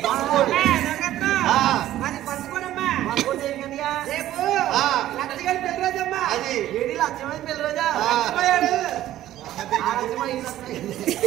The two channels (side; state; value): left; quieter; 13.5 dB